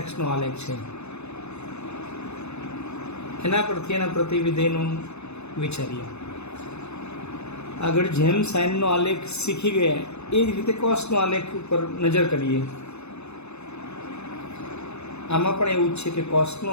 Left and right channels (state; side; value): late; right; 0.81 ms